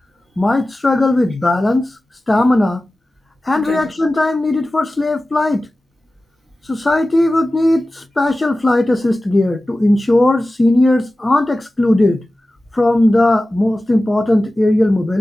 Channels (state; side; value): normal; both; correlation 0.95